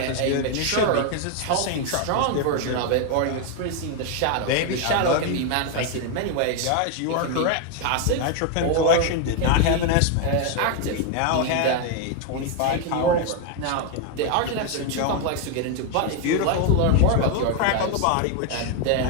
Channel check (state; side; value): different; both; correlation 0.01